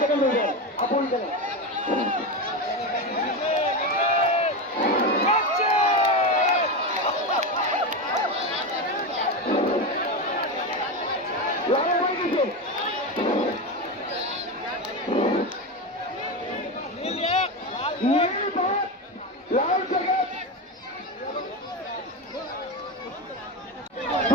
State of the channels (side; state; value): both; normal; correlation 0.17